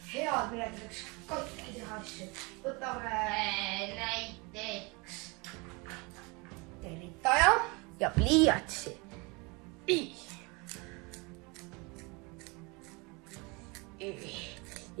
head, millega saaks katki teha asju. Võtame näiteks tervitaja ja pliiatsi.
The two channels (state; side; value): quieter; left; 27.9 dB